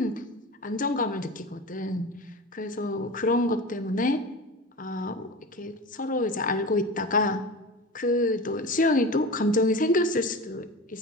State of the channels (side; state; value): both; normal; correlation 0.31